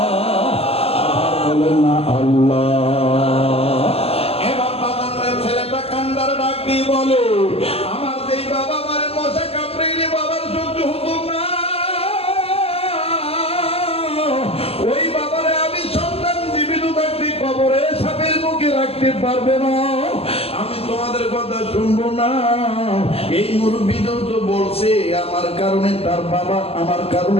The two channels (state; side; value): late; right; 0.29 ms